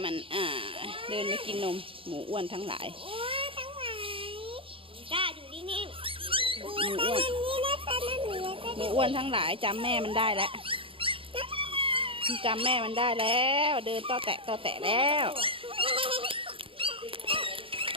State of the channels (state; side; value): late; left; 0.26 ms